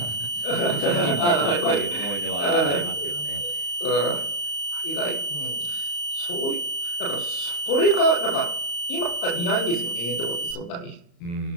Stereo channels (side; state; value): right; late; 34 ms